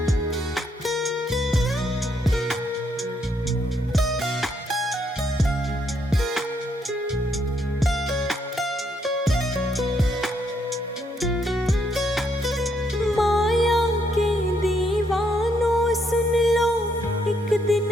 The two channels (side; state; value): both; normal; correlation 0.74